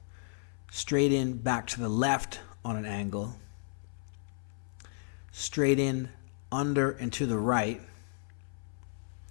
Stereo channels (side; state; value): right; silent; 55 dB below the other